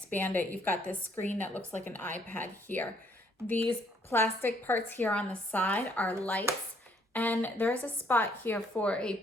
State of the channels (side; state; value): both; normal; correlation 0.67